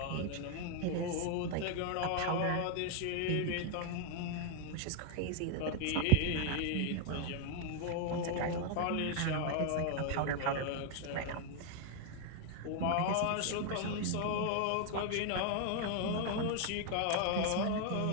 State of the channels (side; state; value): both; different; correlation 0.00